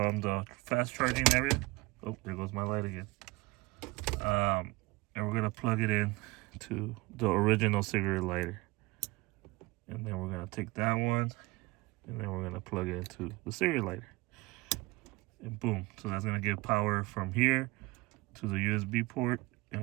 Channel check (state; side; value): quieter; left; 22.4 dB